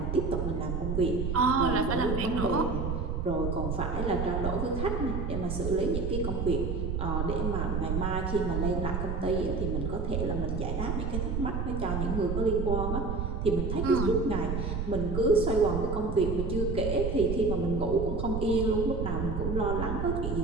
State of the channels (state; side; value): noise; right; rumble, 2 dB below the sound